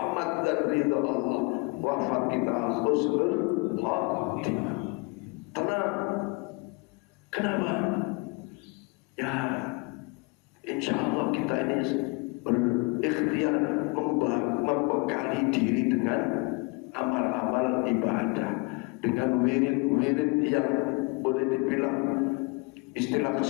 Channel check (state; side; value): quieter; right; 28.6 dB